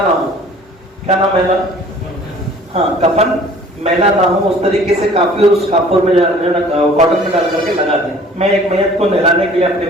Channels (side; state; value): both; normal; correlation 0.51